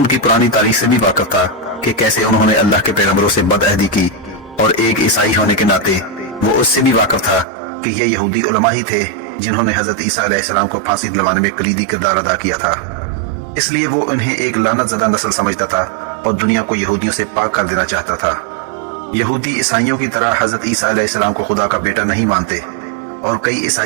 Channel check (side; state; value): left; drops out; at 7.5 s